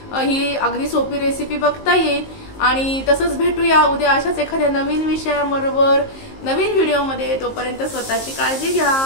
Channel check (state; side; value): late; right; 19 ms